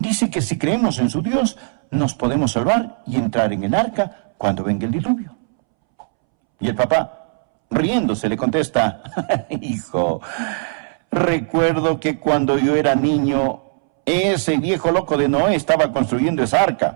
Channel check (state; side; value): silent; left; 66 dB below the other